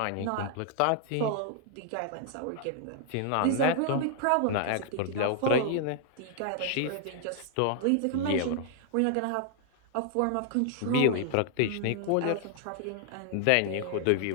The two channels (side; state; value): both; different; correlation 0.00